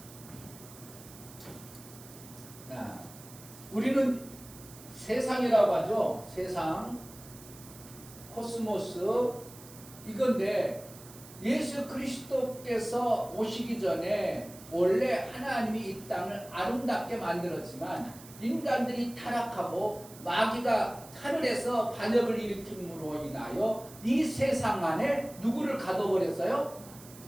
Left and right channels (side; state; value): right; noise; hiss, 18 dB below the sound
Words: 우리는 세상이라고 하죠. 세상, 코스모스 이건데 예수 그리스도께서 오시기 전에 원래 하나님이 이 땅을 아름답게 만들었지만 인간들이 타락하고 마귀가 하늘에서 반역을 일으킴으로 인하여 이 세상 안에 누구를 가둬버렸어요?